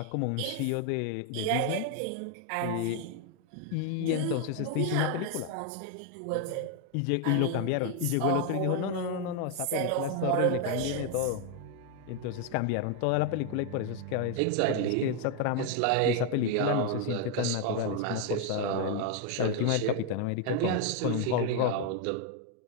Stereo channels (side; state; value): both; different; correlation 0.01